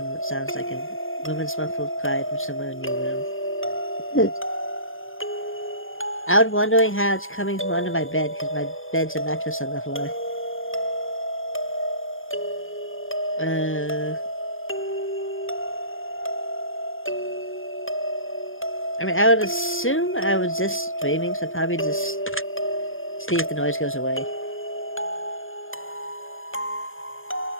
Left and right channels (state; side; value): late; right; 0.59 ms